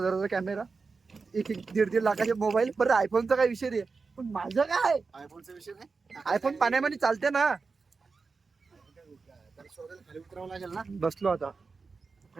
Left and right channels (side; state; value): left; quieter; 4.5 dB